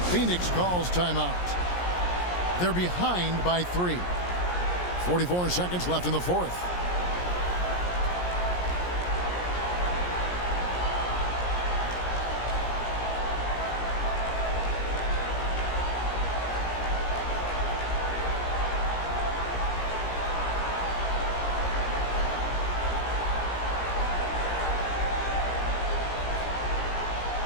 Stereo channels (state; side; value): late; right; 17 ms